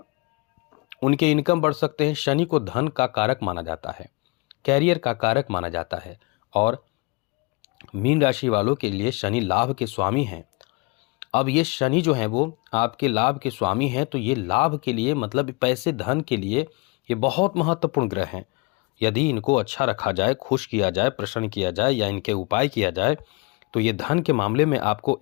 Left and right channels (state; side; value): quieter; right; 27.6 dB